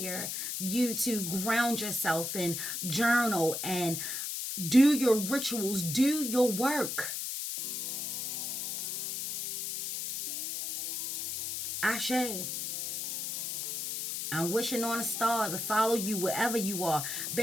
you to ground yourself and journal and do your rituals, do your work. Ashe. I'm wishing on a star to follow you wherever you are.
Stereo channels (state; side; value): noise; left; hiss, 4 dB below the sound